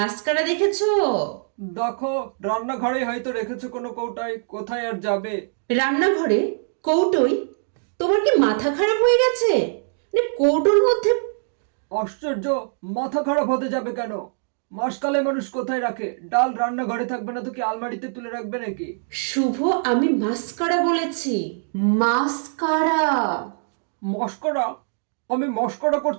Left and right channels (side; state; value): left; silent; digital silence